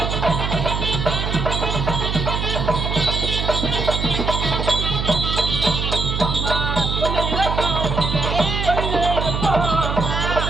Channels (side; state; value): right; noise; hum, 2 dB below the sound